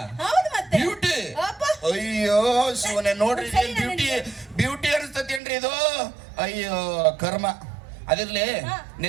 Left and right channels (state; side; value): drops out; left; at 5.4 s